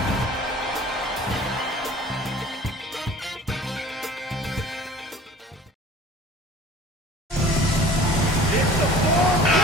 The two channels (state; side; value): normal; both; correlation 0.45